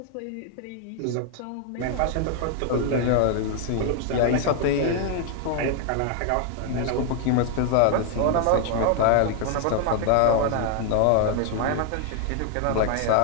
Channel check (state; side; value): different; both; correlation 0.00